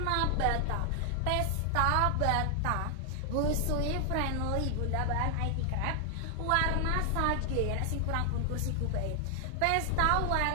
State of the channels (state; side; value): different; both; correlation 0.00